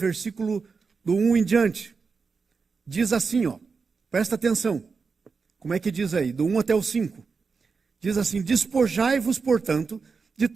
do 1 em diante. Diz assim, presta atenção. Como é que diz aí? Do 1 até o 5. Diz assim, despojai-vos, portanto, de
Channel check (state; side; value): quieter; left; 5.0 dB